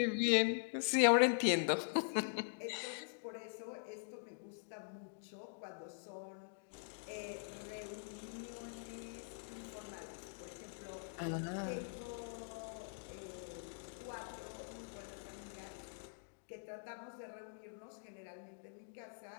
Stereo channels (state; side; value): silent; right; digital silence